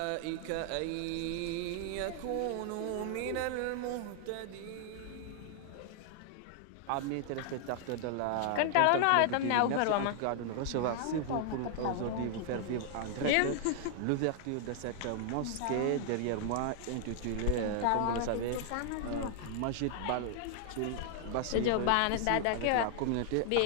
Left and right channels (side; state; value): both; different; correlation 0.00